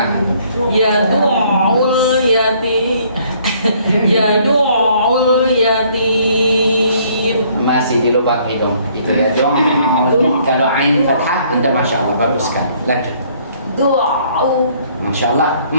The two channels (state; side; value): inverted; both; correlation -0.63